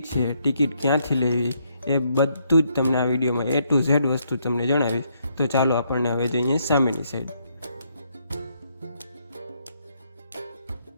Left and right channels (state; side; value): inverted; both; correlation -0.73